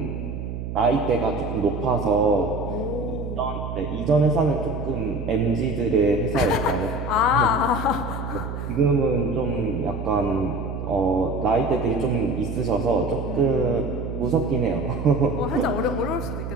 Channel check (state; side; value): noise; right; hum, 6 dB below the sound